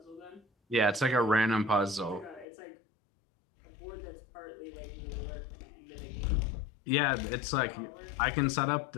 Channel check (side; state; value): right; drops out; at 2.5 s